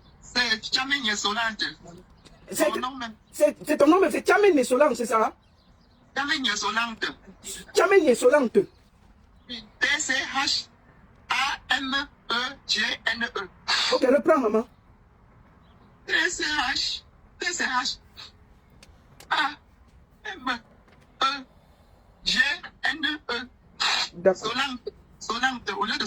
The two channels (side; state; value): both; identical; correlation 1.00